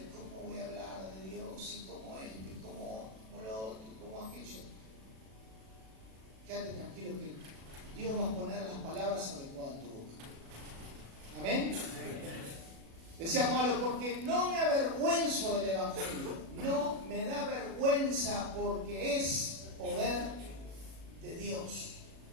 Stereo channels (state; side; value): late; left; 36 ms